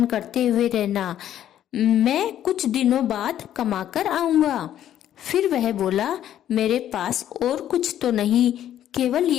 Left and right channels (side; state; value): right; quieter; 11.2 dB